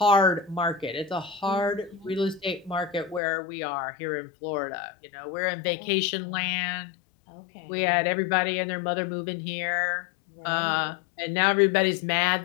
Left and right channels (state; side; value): drops out; right; at 3.2 s